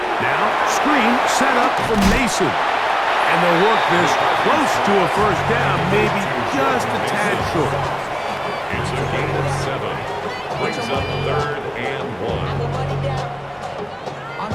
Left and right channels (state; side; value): identical; both; correlation 1.00